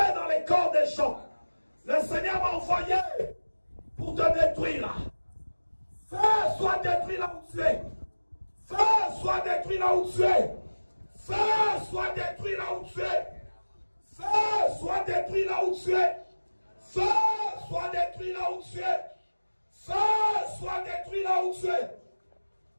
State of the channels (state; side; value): inverted; both; correlation -1.00